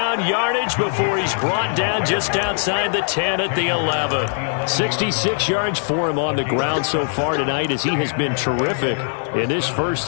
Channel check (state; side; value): silent; right; digital silence